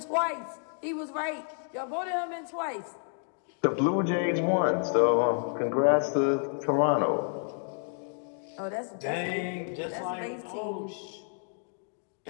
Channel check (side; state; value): right; silent; 58 dB below the other